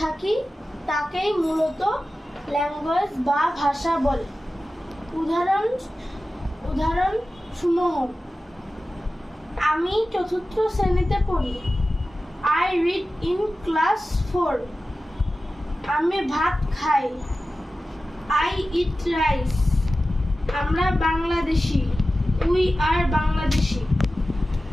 থাকি তাকেই মূলত ল্যাঙ্গুয়েজ বা ভাষা বলে। উদাহরণ সমূহ: আমি চতুর্থ শ্রেণীতে পড়ি। I read in class 4. আমি ভাত খাই। I eat rice. আমরা বাংলাদেশি। We are Bangladeshi.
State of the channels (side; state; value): both; normal; correlation 0.95